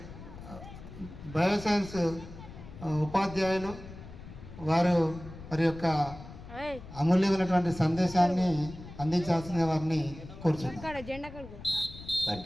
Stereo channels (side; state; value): left; noise; rumble, 14 dB below the sound